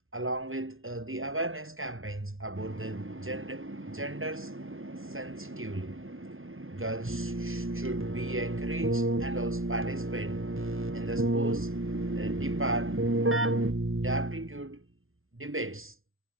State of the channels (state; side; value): late; left; 0.60 ms